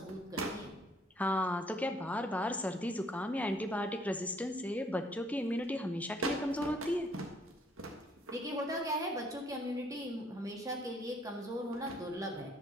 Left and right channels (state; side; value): normal; both; correlation 0.64